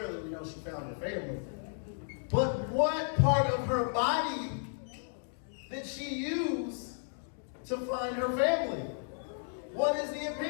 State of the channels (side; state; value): right; silent; digital silence